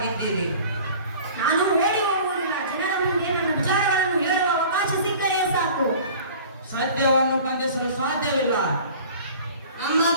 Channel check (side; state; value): both; inverted; correlation -0.44